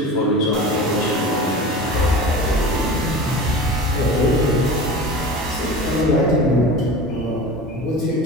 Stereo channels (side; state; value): both; normal; correlation 0.33